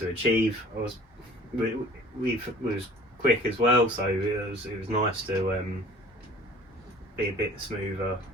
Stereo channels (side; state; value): both; normal; correlation 0.49